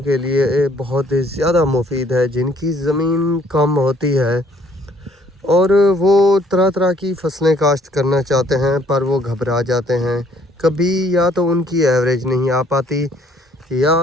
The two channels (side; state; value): both; normal; correlation 0.62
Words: के लिए बहुत ज़्यादा मुफीद है जिनकी ज़मीन कम होती है और वो तरह तरह की फसलें काश्त करना चाहते हैं, पर वो घबरा जाते हैं। कभी या तो उनकी एवरेज नहीं आ पाती,